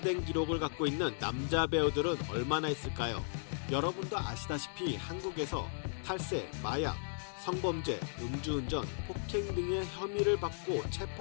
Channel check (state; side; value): silent; right; digital silence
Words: 기록을 갖고 있는 남자 배우들은 얼마나 있을까요? 여러분도 아시다시피 한국에서 탈세, 마약, 성범죄, 음주운전, 폭행 등의 혐의를 받고